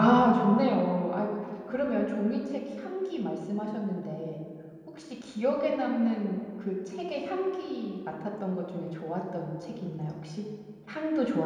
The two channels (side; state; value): both; identical; correlation 1.00